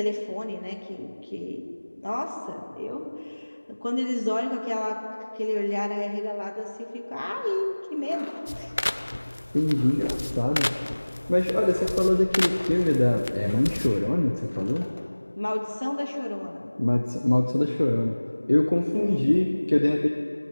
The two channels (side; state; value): both; inverted; correlation -1.00